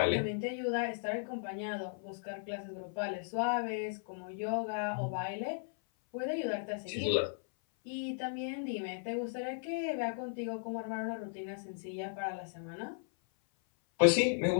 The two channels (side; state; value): right; silent; 54 dB below the other